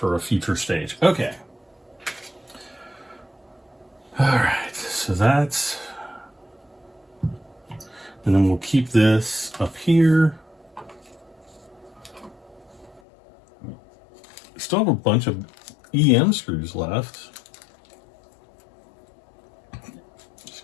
a future stage. Okay. All right, so that's, and then we'll keep this up here. Still have a bunch of EM screws left.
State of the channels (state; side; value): drops out; right; at 13.0 s